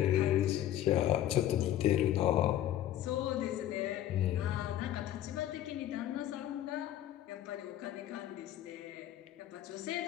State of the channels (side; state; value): right; quieter; 12.3 dB